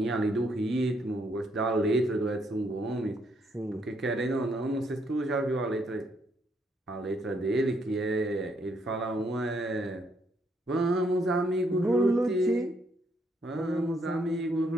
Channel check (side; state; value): both; normal; correlation 0.73